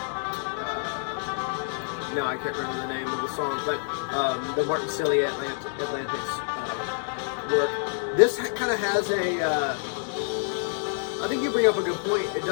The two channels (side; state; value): right; silent; digital silence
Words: No, I can't remember the name of the song, but the Martin Cillian Atlantic's work. This kind of has a. I think you bring up a good point. It